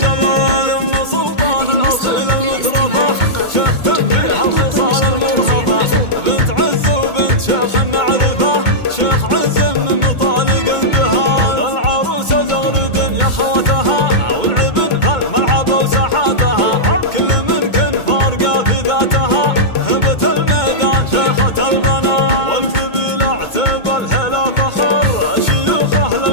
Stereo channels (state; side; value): late; right; 2.2 ms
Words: يم سلطان الاصيل المترفه، شيخ تنبيه الخصال المرهبه، بنت عز وبنت شيخ معرفه، شيخ عز من مطالق اندهال. العروسه زغرد يا خواتها، والعبن فالملعب وساحاتها، كل من كن فارقه في ذاتها، هبت الميدان شيخة البنات. والقبيله اعتب الهلا فخر، شيوخه